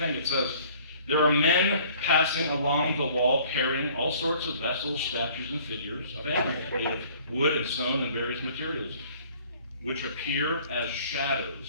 it says. There are men passing along the wall carrying all sorts of vessels, statues, and figures of animals made of wood and stone and various materials, which appear as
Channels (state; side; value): inverted; both; correlation -0.54